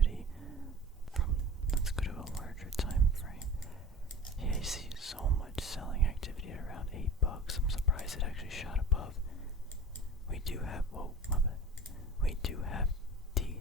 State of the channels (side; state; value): both; normal; correlation 0.38